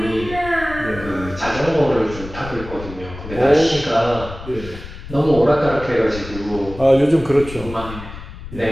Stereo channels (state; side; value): noise; left; rumble, 12 dB below the sound